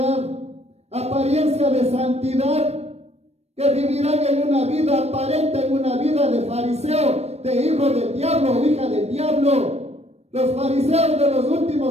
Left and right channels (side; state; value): left; late; 0.31 ms